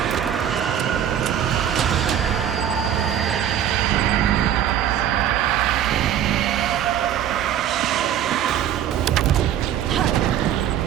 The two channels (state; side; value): quieter; left; 10.1 dB